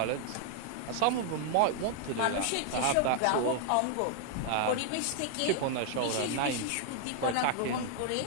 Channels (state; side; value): different; both; correlation 0.00